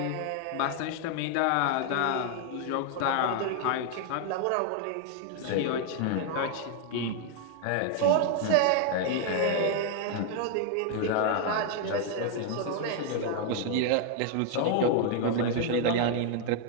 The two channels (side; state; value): both; different; correlation 0.00